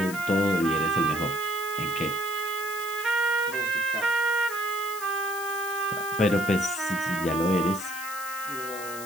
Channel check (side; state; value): left; noise; hiss, 11 dB below the sound